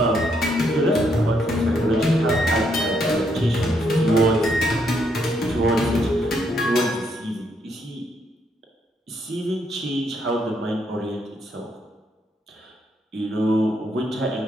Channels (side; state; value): both; normal; correlation 0.75